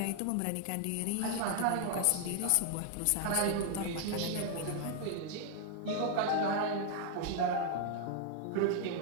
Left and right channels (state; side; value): different; both; correlation 0.00